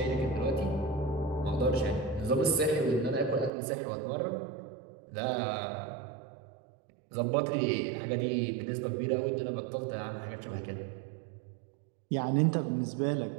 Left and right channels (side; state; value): left; drops out; at 3.5 s